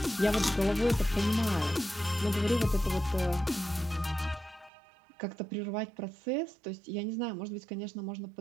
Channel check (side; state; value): left; drops out; at 4.7 s